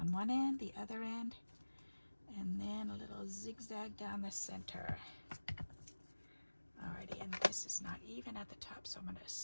one end, the other end, and then a little zigzag down the center. Alrighty, and this is not even at the top, so I'm going to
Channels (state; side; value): inverted; both; correlation -1.00